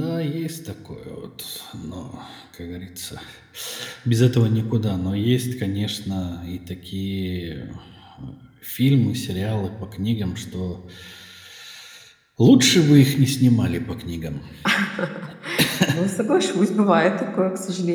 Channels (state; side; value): identical; both; correlation 1.00